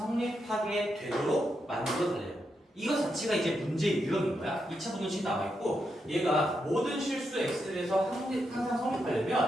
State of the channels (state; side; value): normal; both; correlation 0.84